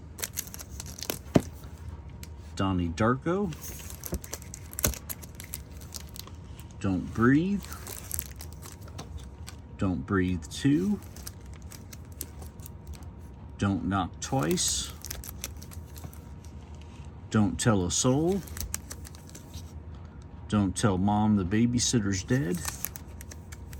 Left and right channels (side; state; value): both; identical; correlation 1.00